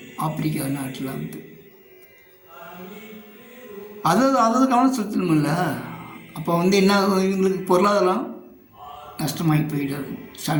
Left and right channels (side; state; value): both; identical; correlation 1.00